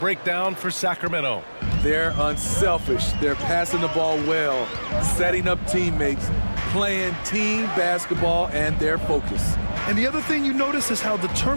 for Sacramento. They're unselfish. They're passing the ball well, setting up teammates, playing team basketball, and their focus. And the other thing you notice is how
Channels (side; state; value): both; inverted; correlation -1.00